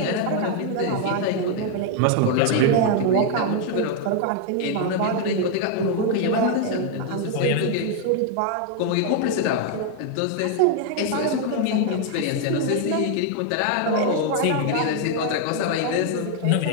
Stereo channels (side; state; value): both; different; correlation 0.00